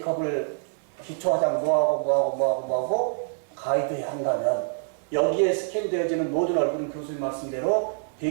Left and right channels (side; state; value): left; silent; digital silence